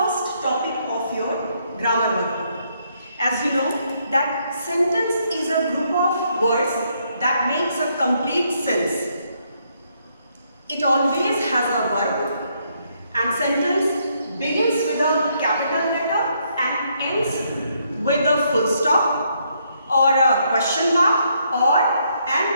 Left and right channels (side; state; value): both; inverted; correlation -0.73